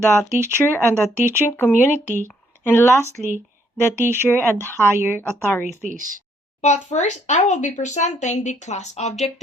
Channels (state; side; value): normal; both; correlation 0.69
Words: teacher and the teaching community, and lastly, the teacher and higher authorities. But first, I will be presenting the class